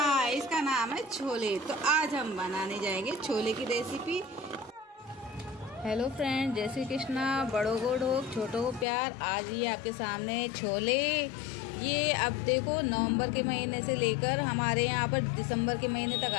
इसका नाम है छोले। तो आज हम बनाने जाएंगे छोले की रेसिपी। हेलो फ्रेंड, जय श्री कृष्णा। बड़ों को ढोक, छोटों को प्यार। आज ये आपके सामने छोले, ये अब देखो नवंबर के महीने से लेकर हमारे यहाँ पर दिसंबर के महीने तक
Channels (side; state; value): right; drops out; at 8.8 s